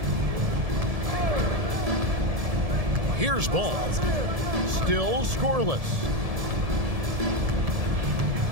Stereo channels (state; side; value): late; left; 1.7 ms